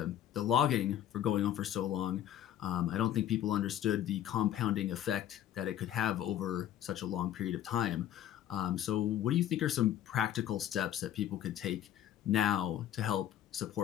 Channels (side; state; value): right; quieter; 11.2 dB